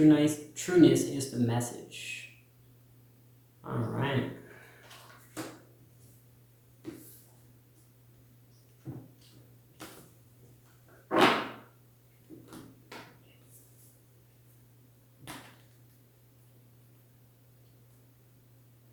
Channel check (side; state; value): both; identical; correlation 1.00